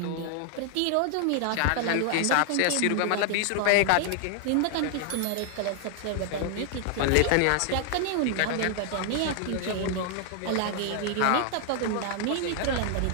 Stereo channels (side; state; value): both; different; correlation 0.00